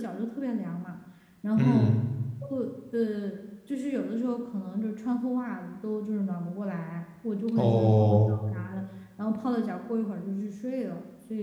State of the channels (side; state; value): both; identical; correlation 1.00